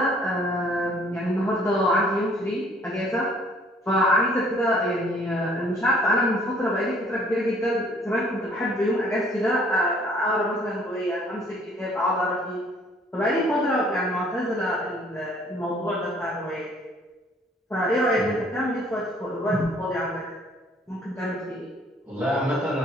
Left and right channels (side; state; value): both; normal; correlation 0.59